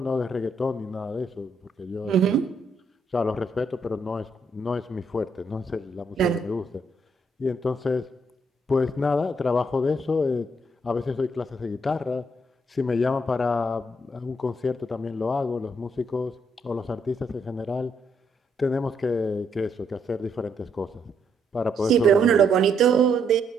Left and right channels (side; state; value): both; normal; correlation 0.74